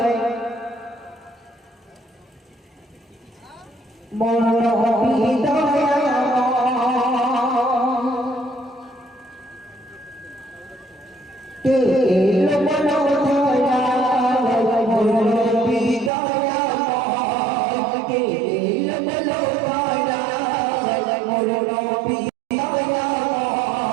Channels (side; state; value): left; drops out; at 16.1 s